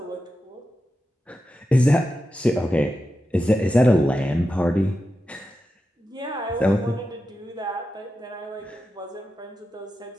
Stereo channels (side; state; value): both; normal; correlation 0.90